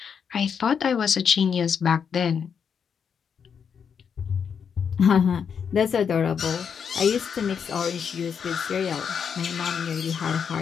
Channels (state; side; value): quieter; right; 7.0 dB